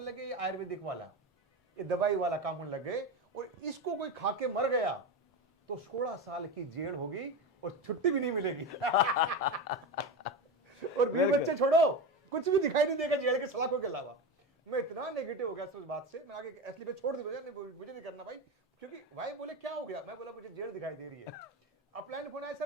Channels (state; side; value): normal; both; correlation 0.20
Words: लगे ये आयुर्वेदिक वाला, ये दवाई वाला काम होने लग गए, और इसको कोई खा के मर गया तो 16 साल की जेल होगी और छुट्टी भी नहीं मिलेगी। और 20 बच्चे छोड़ो, कुछ भी दिखाई नहीं देगा जेल के सलाखों के अलावा। मैं इतना नेगेटिव हो गया उस बात से, मैं आगे एस्क्लेपियस छोड़ दी, मुझे नहीं करना भाई, क्योंकि भाई बोले क्या हो गया, मैं बोला मुझे जेल दिखाई दे रही है। अपलाइन फोन आया,